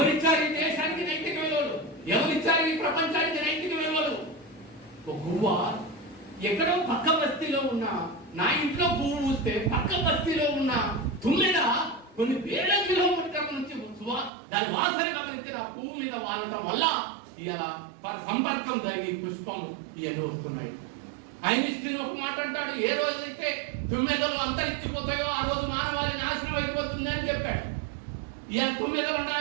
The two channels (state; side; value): drops out; left; at 14.3 s